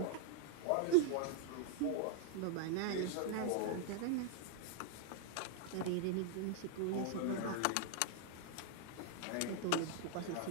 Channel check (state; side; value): different; both; correlation 0.00